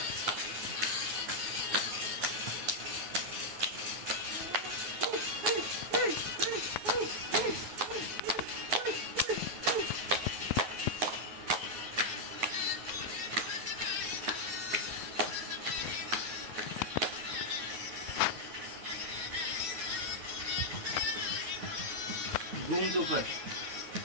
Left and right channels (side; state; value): left; late; 9.6 ms